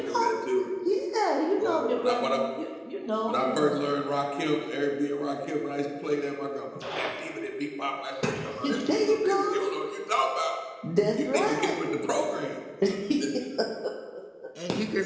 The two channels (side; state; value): both; identical; correlation 1.00